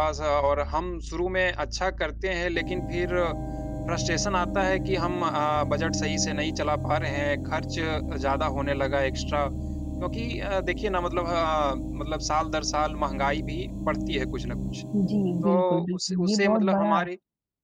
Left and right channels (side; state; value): both; identical; correlation 1.00